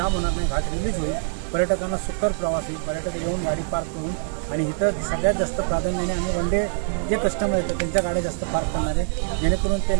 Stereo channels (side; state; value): left; silent; digital silence